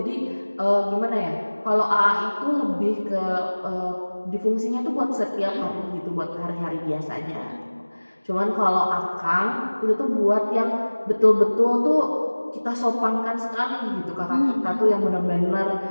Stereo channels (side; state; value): both; inverted; correlation -1.00